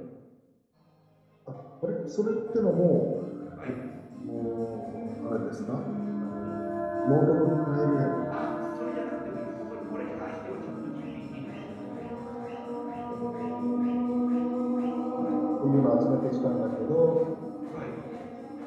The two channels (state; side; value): identical; both; correlation 1.00